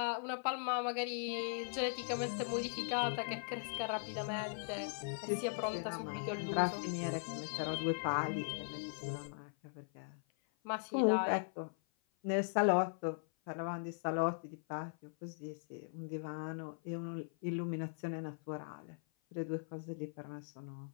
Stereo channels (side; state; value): right; silent; 51 dB below the other